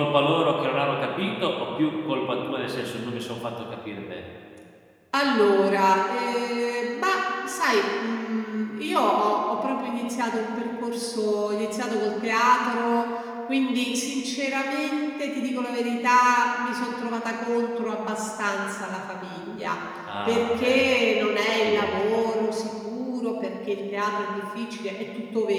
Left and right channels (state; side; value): identical; both; correlation 1.00